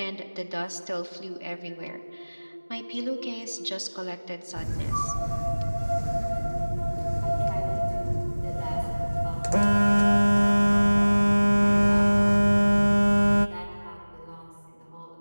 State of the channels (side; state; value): both; inverted; correlation -1.00